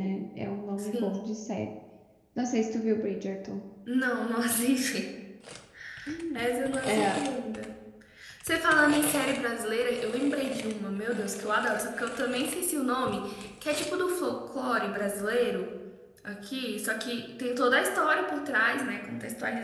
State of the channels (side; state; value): both; identical; correlation 1.00